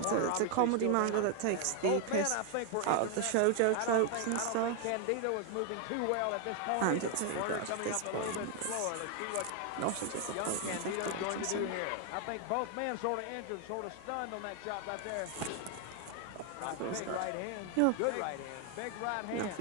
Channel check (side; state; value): both; different; correlation 0.01